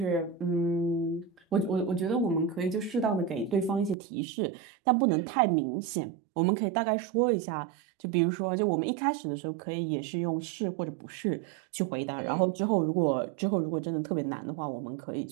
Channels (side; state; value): left; drops out; at 4.0 s